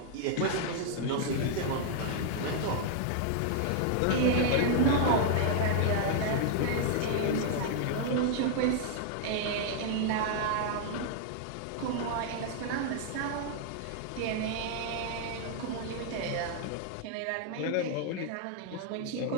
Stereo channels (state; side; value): different; both; correlation -0.01